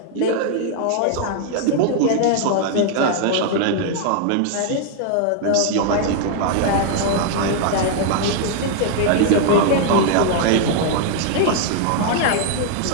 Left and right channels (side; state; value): both; different; correlation 0.00